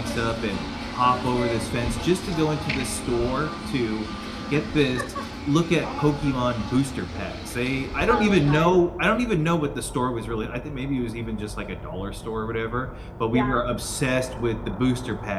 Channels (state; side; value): identical; both; correlation 1.00